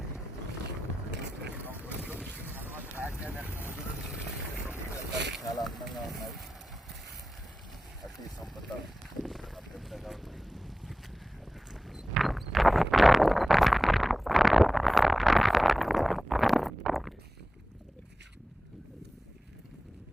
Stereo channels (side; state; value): both; normal; correlation 0.95